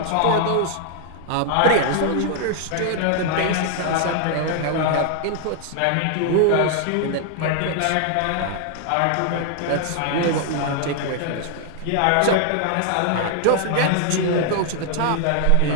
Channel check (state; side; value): different; both; correlation 0.00